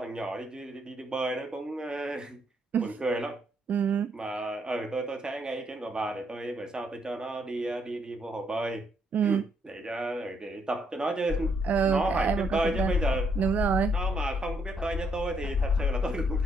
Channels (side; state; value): both; normal; correlation 0.73